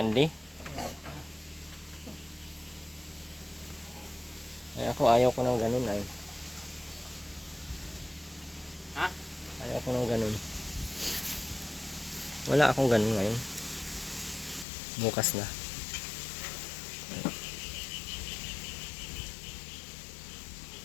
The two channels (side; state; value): right; drops out; at 14.7 s